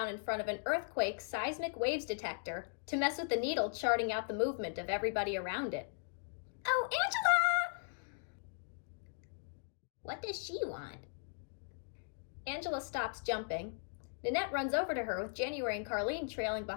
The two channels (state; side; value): silent; right; digital silence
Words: in front of an earthquake seismic waves detector to mess with the needle charting out the movement of everybody around it. Oh, Angela! What does she want? Angela stops jumping. Nanette runs over to her with January and Carlene trailing